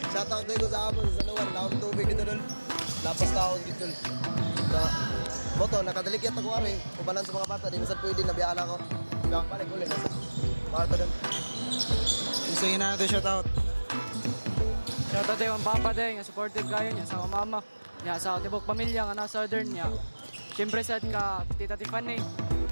Shoutout na ko sa amon sa Sanuan, laon tubig dito doon. Lapas taon dito. Na, boto, nakadaligyat ako ari. Kubalan sa mga bata, di masad pwede, nabiyala ko. Biyang balik ulit, nasa bata doon. Kinsa ginana shout out. Shout out ang papa day nga supportive kayo niya sa mama. Niya sa tibok pamilya nga na southern niya. Siyempre sa ka Tita Tiffany,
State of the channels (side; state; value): both; inverted; correlation -1.00